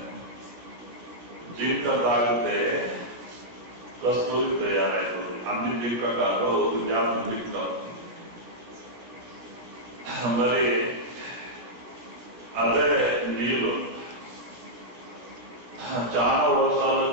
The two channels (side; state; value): left; late; 16 ms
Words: జింక తాగితే కస్తూరి తయారైతుంది. అన్ని జింక కాదు, జాతి జింక. మరి అదే నీళ్ళు చాలా వర్షాలు